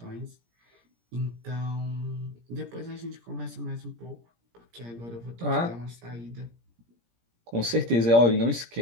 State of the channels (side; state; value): left; late; 17 ms